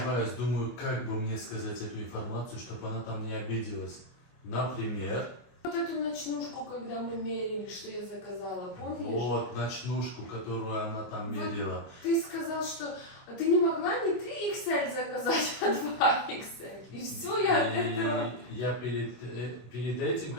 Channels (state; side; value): late; right; 24 ms